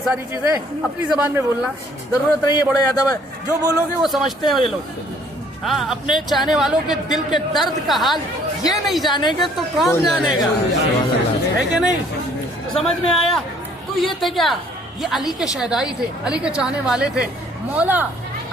ساری چیزیں اپنی زبان میں بولنا، ضرورت نہیں ہے بڑے ادب ہے. جو بولو گے وہ سمجھتے ہیں یہ لوگ. ہاں اپنے چاہنے والوں کے دل کے درد کا حال یہ نہیں جانے گے تو کون جانے گا؟ ہے کہ نہیں؟ تو سمجھ میں آیا؟ تو یہ تھے کیا؟ یہ علی کے شہدائی تھے، علی کے چاہنے والے تھے. مولا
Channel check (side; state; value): both; normal; correlation 0.60